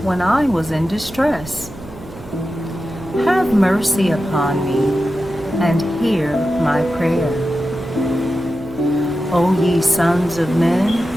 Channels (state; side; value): noise; right; hum, 17 dB below the sound